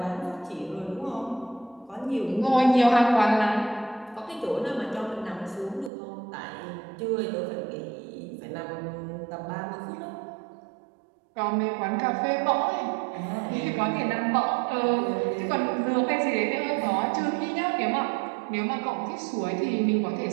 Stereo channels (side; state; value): left; drops out; at 5.9 s